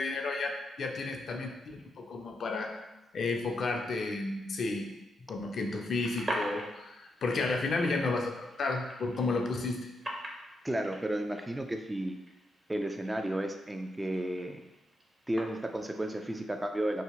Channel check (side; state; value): both; normal; correlation 0.83